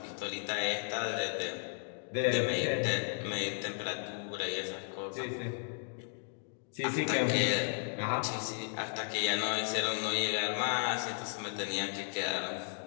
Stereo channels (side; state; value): right; silent; 55 dB below the other